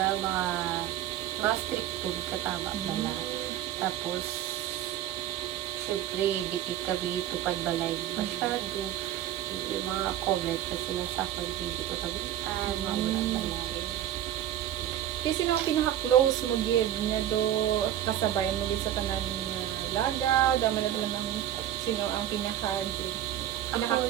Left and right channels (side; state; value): left; quieter; 11.7 dB